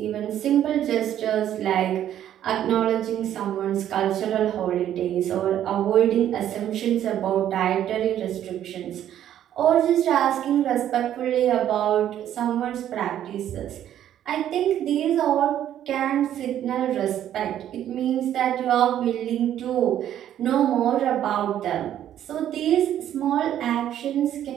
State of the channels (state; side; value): quieter; left; 11.1 dB